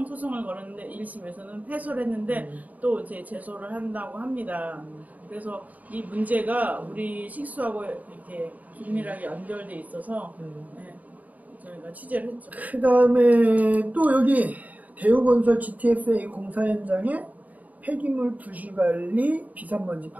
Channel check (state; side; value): late; left; 0.075 ms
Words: 소송을 걸었는데 1심에서는 패소를 했는데 또 이제 제소를 한다고 합니다. 그래서 이 문제가 우리 식수하고 이렇게 긴밀하게 연결돼 있어서 저희가 취재를 했죠. 그 다음에 또 여기 대우건설 GTSA 공사 현장에 폐기물 부실관리 비산먼지